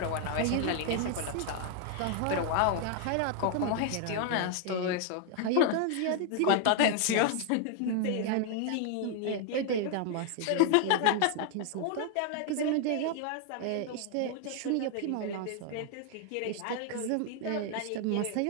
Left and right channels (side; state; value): both; different; correlation 0.00